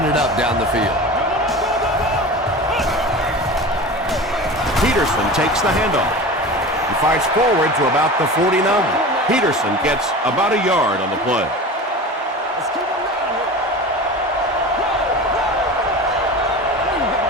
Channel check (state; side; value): normal; both; correlation 0.33